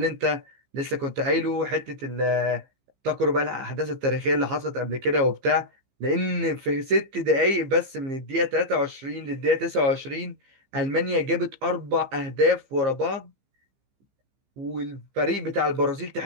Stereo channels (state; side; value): late; left; 15 ms